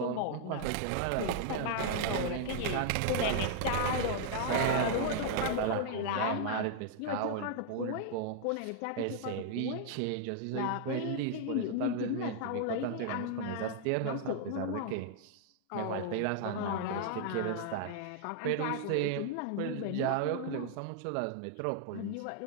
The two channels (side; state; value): both; different; correlation 0.00